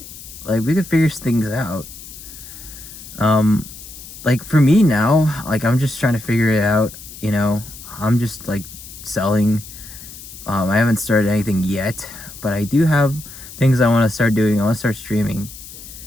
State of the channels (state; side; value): noise; left; hiss, 15 dB below the sound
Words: Like, we could figure things out. Like, for me now, like, I'm just trying to figure it out, you know. I'm just, like, selling. I haven't started anything yet, but I do have things I want to start doing. I want to start streaming,